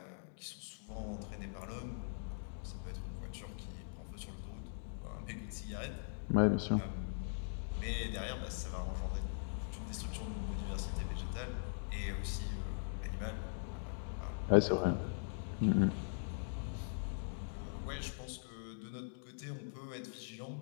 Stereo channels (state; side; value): silent; right; digital silence